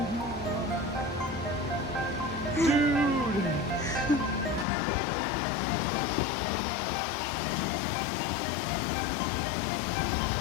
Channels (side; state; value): right; drops out; at 4.7 s